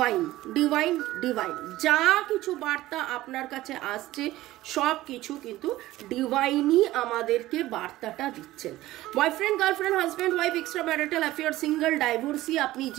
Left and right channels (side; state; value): left; quieter; 16.4 dB